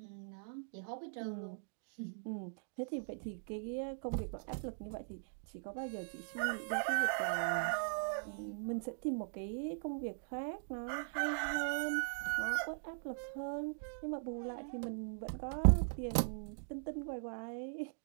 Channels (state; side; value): silent; left; digital silence